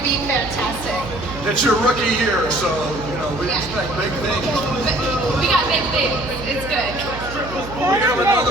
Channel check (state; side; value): noise; right; hum, 12 dB below the sound